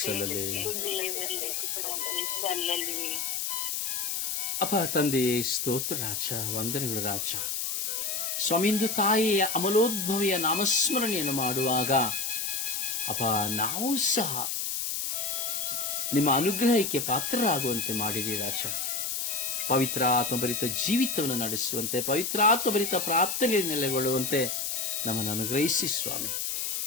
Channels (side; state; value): left; noise; hiss, 1 dB below the sound